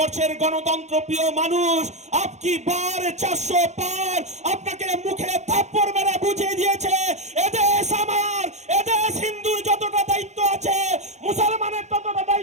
গণতন্ত্র প্রিয় মানুষ আপকি বার 400 পার আপনাকে মুখে থাপ্পড় মেরে বুঝিয়ে দিয়েছে, এদেশ আমার, এদেশ হিন্দুর যতটা দায়িত্ব আছে, মুসলমানের ততটা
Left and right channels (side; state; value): left; late; 0.33 ms